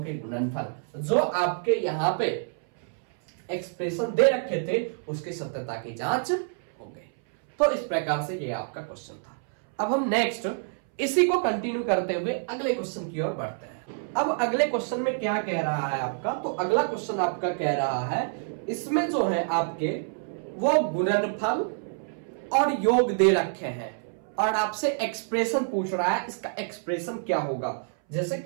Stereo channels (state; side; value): silent; left; 60 dB below the other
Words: के गुणनफल जो आपके यहाँ पे एक्सप्रेशन दे रखे थे उसकी सत्यता की जांच हो गई। तो इस प्रकार से ये आपका क्वेश्चन था। अब हम नेक्स्ट इसी को कंटिन्यू करते हुए अगले क्वेश्चन की ओर बढ़ते हैं। अब अगले क्वेश्चन में क्या कह रहा है आपका, तो अगला क्वेश्चन आपका कह रहा है इसमें जो है आपके वो गुणनफल और योग दे रखे हैं और आपसे एक्सप्रेशन पूछ रहा है, इसका एक्सप्रेशन क्या होगा। जैसे